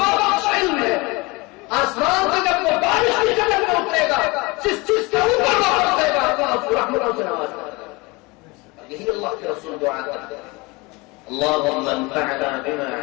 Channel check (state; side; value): quieter; right; 25.1 dB